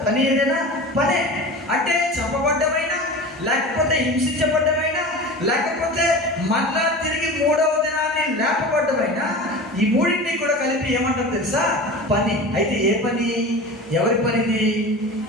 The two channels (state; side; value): normal; both; correlation 0.33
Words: పని ఏదైనా పనే. అంటే చంపబడ్డమైనా, లేకపోతే హింసించబడ్డమైనా, లేకపోతే మళ్ళా తిరిగి 3వ దినాన్ని లేపబడ్డమైనా, ఈ మూడింటిని కూడా కలిపి ఏమంటారు తెలుసా? పని. అయితే ఏ పని? ఎవరి పనిది?